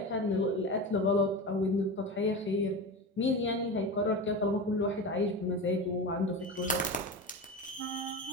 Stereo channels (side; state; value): both; normal; correlation 0.25